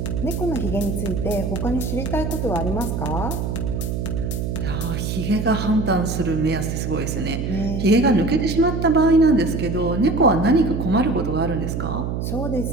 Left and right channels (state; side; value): noise; right; hum, 3 dB below the sound